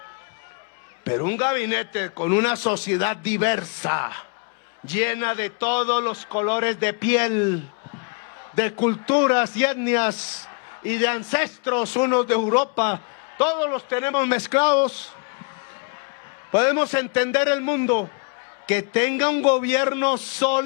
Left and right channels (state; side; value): quieter; right; 35.3 dB